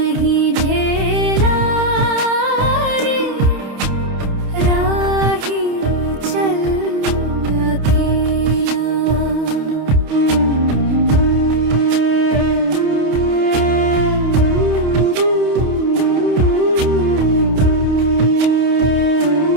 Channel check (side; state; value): left; late; 28 ms